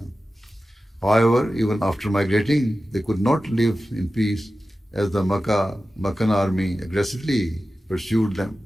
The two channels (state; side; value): normal; both; correlation 0.94